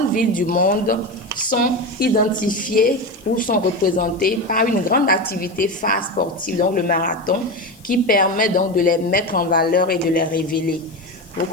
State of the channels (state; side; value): noise; left; hiss, 27 dB below the sound